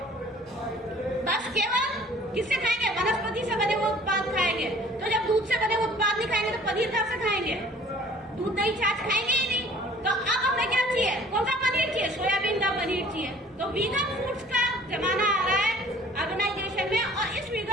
बस केवल किससे खाएंगे, वनस्पति से बने हुए उत्पाद खाएंगे। तो जब दूध से बने हुए उत्पाद नहीं खाएंगे तो पनीर कहाँ से खाएंगे, दूध दही छाछ खाएंगे ही नहीं। तो अब हमें क्या चाहिए, कौन सा पनीर चाहिए, सोयाबीन का पनीर चाहिए। तो वीगन फूड्स का जमाना आ रहा है ऑर्गेनाइजेशन में, और इस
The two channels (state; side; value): normal; both; correlation 0.52